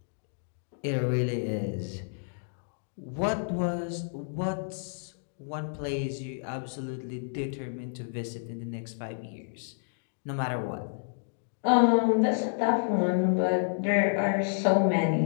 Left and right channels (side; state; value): right; silent; digital silence